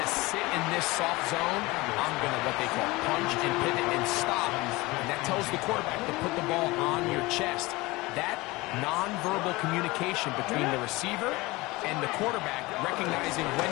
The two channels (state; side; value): quieter; right; 21.8 dB